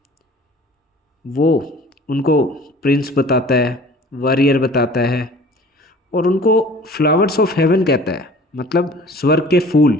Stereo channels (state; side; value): normal; both; correlation 0.47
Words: वो उनको प्रिंस बताता है, वॉरियर बताता है, और उनको फ्लावर्स ऑफ हेवन कहता है, मतलब स्वर्ग के फूल।